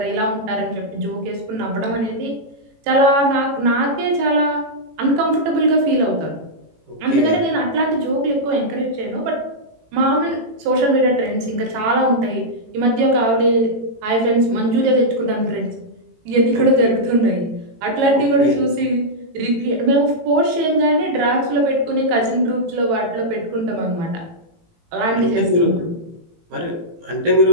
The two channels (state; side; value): late; left; 18 ms